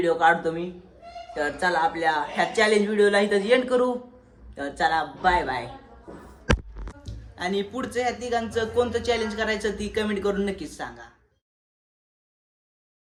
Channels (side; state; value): both; identical; correlation 1.00